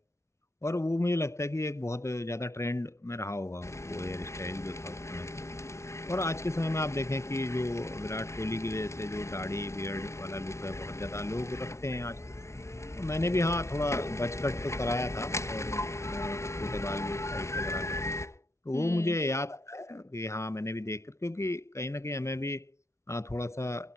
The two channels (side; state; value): right; late; 0.13 ms